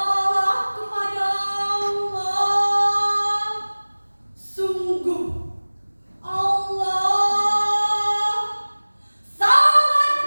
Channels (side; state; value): both; inverted; correlation -1.00